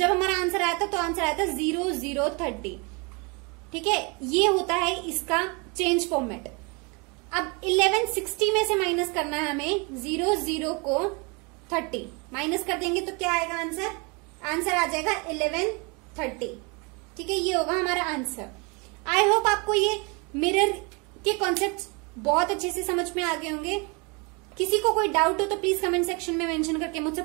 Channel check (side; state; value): left; quieter; 30.4 dB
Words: हमारा आंसर आया था तो आंसर आया था 00:30, ठीक है। ये होता है इसका चेंज फॉर्मेट। अब 11:60 में से माइनस करना है हमें 00 को 30, माइनस कर देंगे तो क्या आएगा आंसर, आंसर आ जाएगा 11:30, ठीक है। ये होगा हमारा आंसर। आई होप आपको ये मिरर के कॉन्सेप्ट बहुत अच्छे से समझ में आ गए होंगे। किसी को कोई डाउट हो तो प्लीज कमेंट सेक्शन में मेंशन करके मुझसे